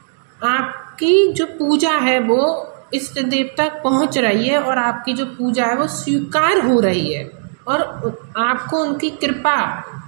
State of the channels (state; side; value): silent; left; digital silence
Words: आपकी जो पूजा है वो इष्ट देव तक पहुंच रही है और आपकी जो पूजा है वो स्वीकार हो रही है और आपको उनकी कृपा